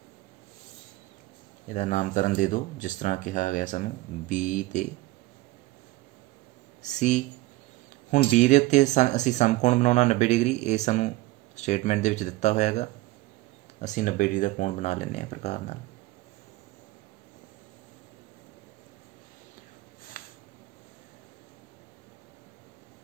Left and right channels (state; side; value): quieter; left; 18.8 dB